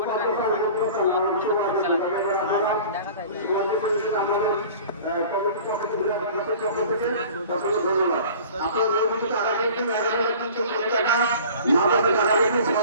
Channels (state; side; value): inverted; both; correlation -0.43